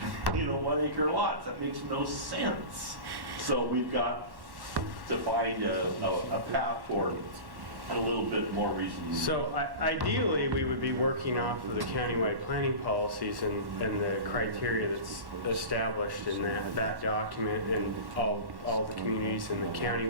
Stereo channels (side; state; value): left; late; 1.1 ms